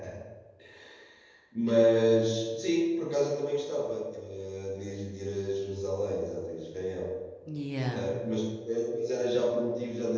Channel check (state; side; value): identical; both; correlation 1.00